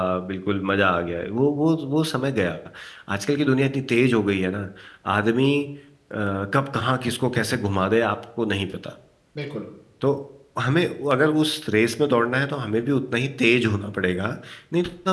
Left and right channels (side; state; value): both; identical; correlation 1.00